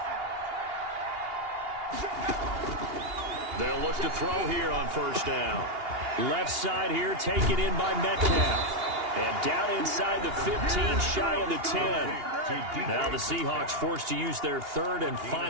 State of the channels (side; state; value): left; late; 2.8 ms